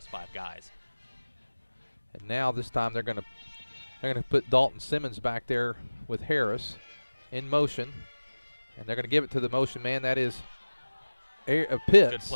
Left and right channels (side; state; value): both; inverted; correlation -1.00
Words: 5 guys. And now this time they're going to put Dalton Simmons back there with Harris in motion. And they're going to give it to the motion man. That is Pitts. Good